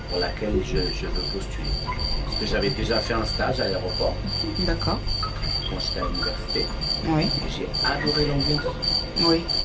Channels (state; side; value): identical; both; correlation 1.00